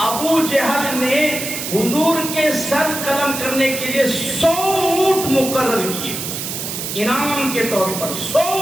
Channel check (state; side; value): noise; right; hiss, 5 dB below the sound